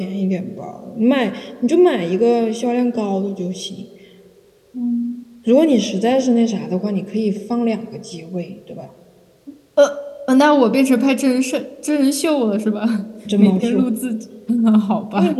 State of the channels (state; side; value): identical; both; correlation 1.00